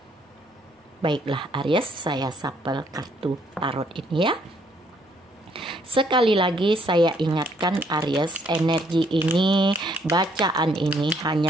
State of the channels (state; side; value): normal; both; correlation 0.67